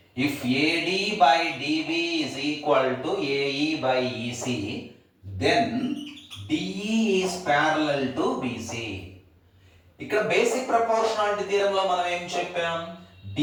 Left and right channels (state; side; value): identical; both; correlation 1.00